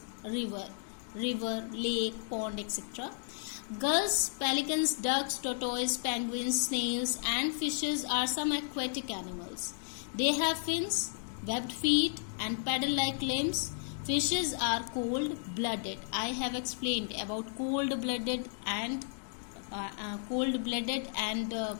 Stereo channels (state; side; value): silent; right; digital silence